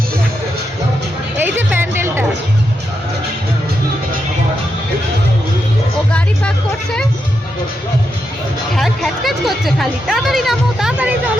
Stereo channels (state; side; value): normal; both; correlation 0.84